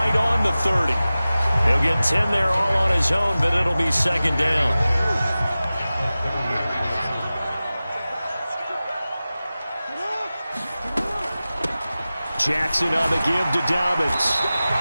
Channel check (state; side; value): inverted; both; correlation -0.96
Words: on the 30. He'll get 10 there all on his own, but it'll be second down. Jackson on the give to Dobbins.